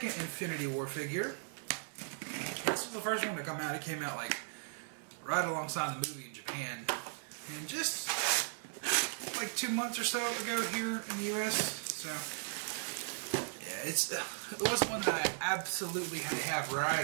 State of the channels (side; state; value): left; silent; 53 dB below the other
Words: Infinity War figure. This was the first one to come out. It came out like right alongside the movie in Japan. And just like 2 months or so ago here in the US. So yeah, it wasn't one that I absolutely had to have right